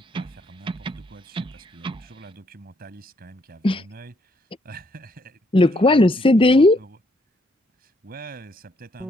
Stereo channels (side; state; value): both; normal; correlation 0.71